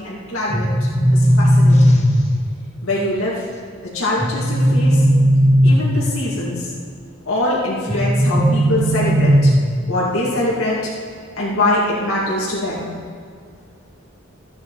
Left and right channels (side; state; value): both; normal; correlation 0.75